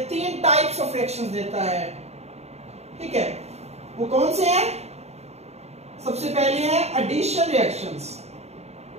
तीन टाइप्स ऑफ रिएक्शंस देता है। ठीक है, वो कौन से हैं? सबसे पहले है एडिशन रिएक्शंस।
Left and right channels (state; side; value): late; left; 0.31 ms